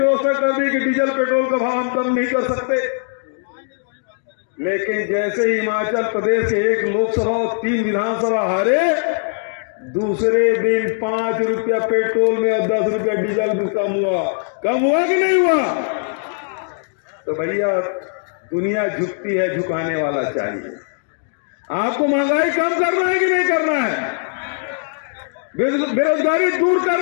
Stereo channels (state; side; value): silent; right; digital silence